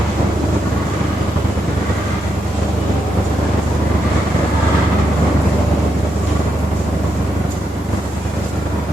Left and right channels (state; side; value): normal; both; correlation 0.82